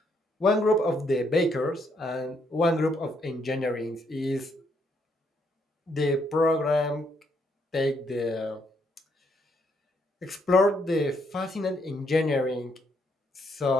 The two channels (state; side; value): normal; both; correlation 0.74